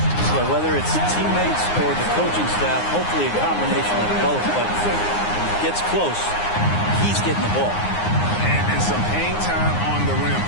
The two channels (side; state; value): right; late; 9.6 ms